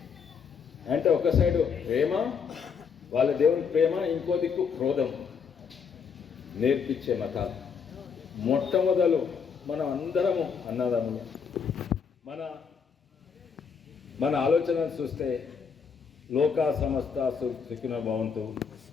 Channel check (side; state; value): right; quieter; 6.3 dB